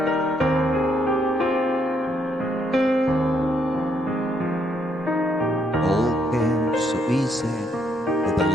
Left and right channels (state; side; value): normal; both; correlation 0.73